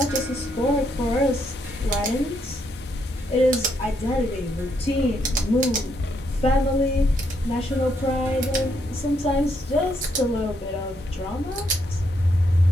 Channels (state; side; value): normal; both; correlation 0.76